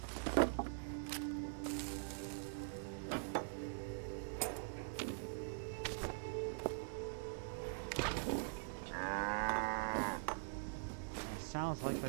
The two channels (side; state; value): left; silent; digital silence